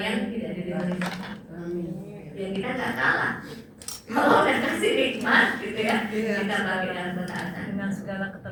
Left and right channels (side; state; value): both; identical; correlation 1.00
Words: tidak dirindukan. Biar kita nggak kalah. Kalau udah kasih nikmat gitu ya, Iya. kita bagi dalam ketaatan. Dengan segala